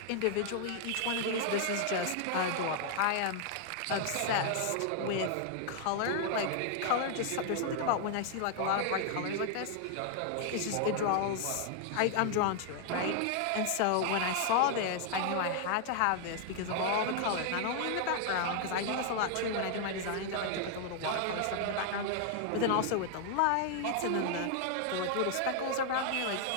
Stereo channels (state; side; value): different; both; correlation 0.00